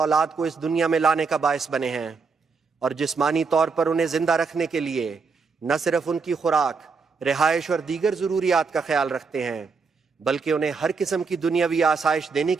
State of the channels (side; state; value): left; quieter; 4.9 dB